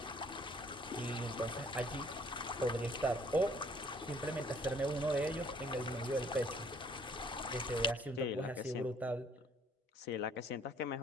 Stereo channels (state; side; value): normal; both; correlation 0.60